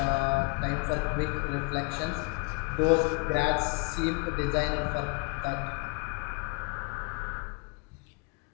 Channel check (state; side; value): quieter; right; 30.3 dB